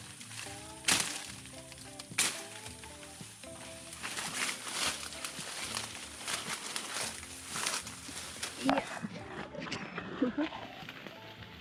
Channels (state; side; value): identical; both; correlation 1.00